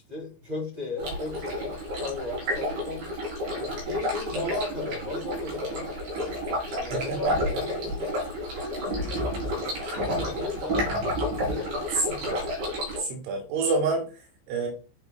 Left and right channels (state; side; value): late; left; 15 ms